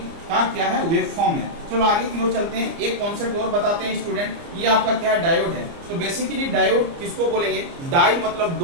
का क्या है, वेव फॉर्म है। चलो आगे की ओर चलते हैं, एक कॉन्सेप्ट और बताते हैं स्टूडेंट। ये आपका क्या है, डायोड है। तो बेसिकली डायोड किसको बोलेंगे, डाई मतलब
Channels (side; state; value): left; late; 29 ms